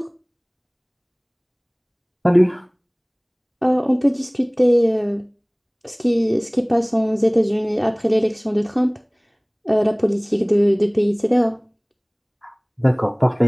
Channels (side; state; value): both; identical; correlation 1.00